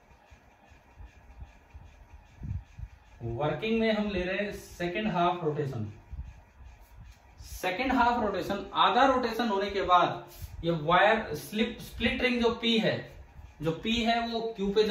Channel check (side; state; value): both; identical; correlation 1.00